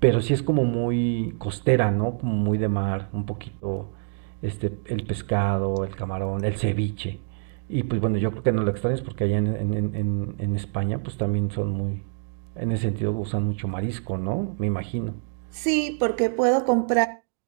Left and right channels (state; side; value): silent; left; digital silence